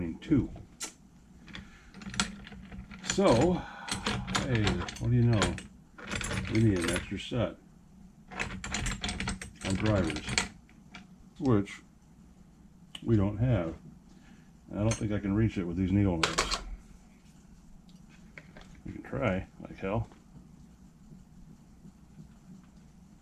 too. So, hey, what do you know? We need an extra set on drivers, which we don't have. I don't think I can reach it with these needle nose. We can try, like hell.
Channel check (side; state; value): both; identical; correlation 1.00